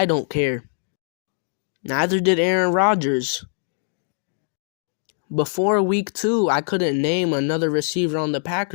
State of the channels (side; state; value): right; silent; 64 dB below the other